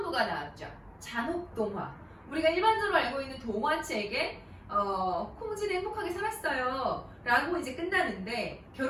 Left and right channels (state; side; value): identical; both; correlation 1.00